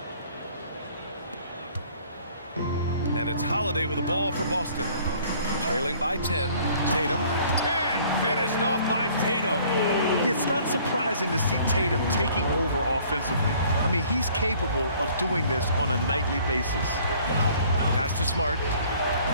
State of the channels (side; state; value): both; inverted; correlation -0.56